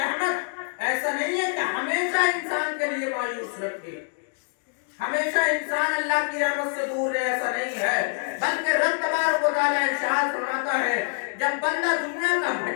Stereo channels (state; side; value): silent; right; 57 dB below the other